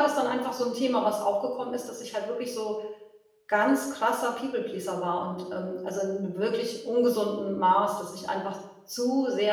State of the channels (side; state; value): both; identical; correlation 1.00